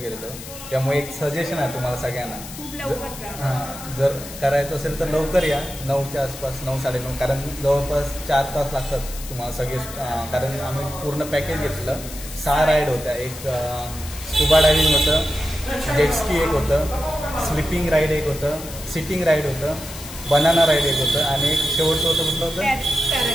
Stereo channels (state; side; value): noise; left; hiss, 13 dB below the sound